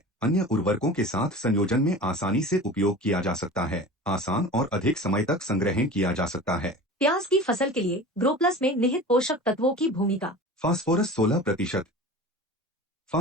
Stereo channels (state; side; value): normal; both; correlation 0.36